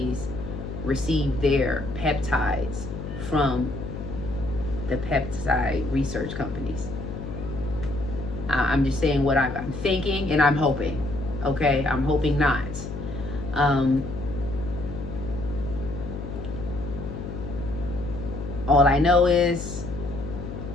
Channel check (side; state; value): left; noise; hum, 8 dB below the sound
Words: receive their peptides from the peptide research companies. I'm just saying what I'm thinking, and I'm hoping. Okay, I'm hoping not. All I know is